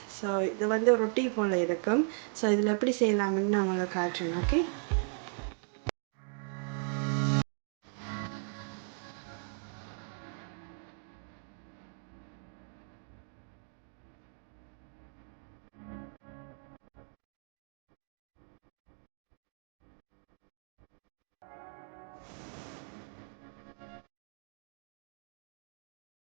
ஸோ இது வந்து ரொட்டி போல் இருக்கும். ஸோ இதில் எப்படி செய்யலாம்னு நான் உங்களுக்கு காட்டுறேன்.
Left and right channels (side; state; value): left; silent; 53 dB below the other